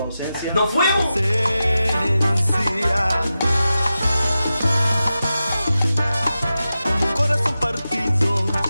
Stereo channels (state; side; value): inverted; both; correlation -0.92